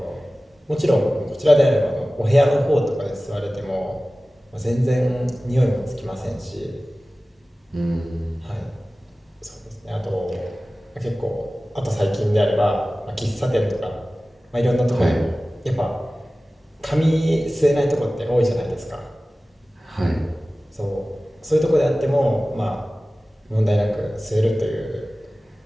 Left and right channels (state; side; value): normal; both; correlation 0.97